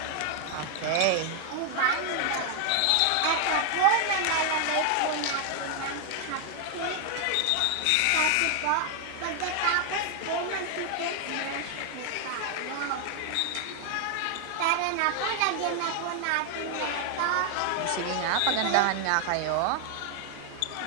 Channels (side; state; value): both; different; correlation 0.00